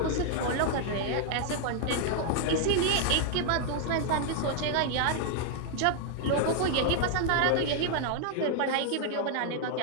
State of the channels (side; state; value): both; different; correlation 0.00